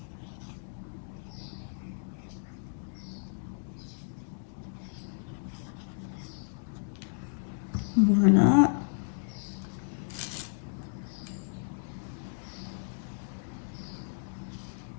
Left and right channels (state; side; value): silent; right; digital silence